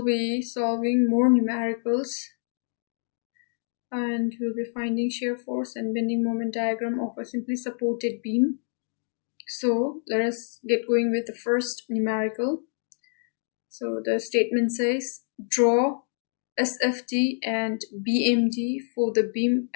be solving more numericals and we'll be finding shear force and bending moment diagram of a simply supported beam. So let us get going with the first numerical. So the statement says draw SFT and BMD for the beam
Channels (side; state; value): right; silent; digital silence